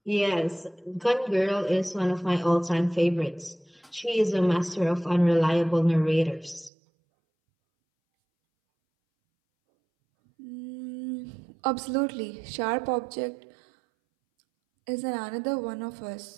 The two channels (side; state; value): left; drops out; at 6.7 s